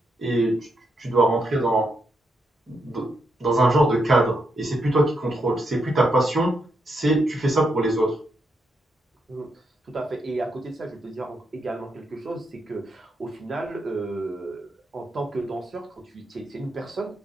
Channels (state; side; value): normal; both; correlation 0.81